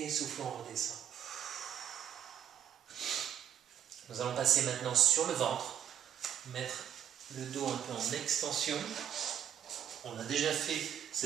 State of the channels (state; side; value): quieter; left; 10.1 dB